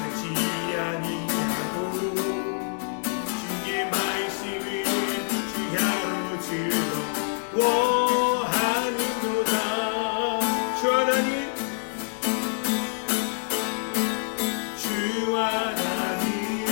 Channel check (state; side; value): silent; right; digital silence